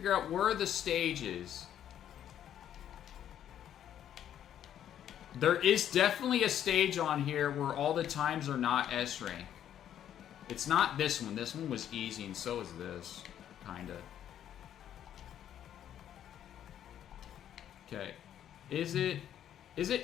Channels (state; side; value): quieter; right; 10.4 dB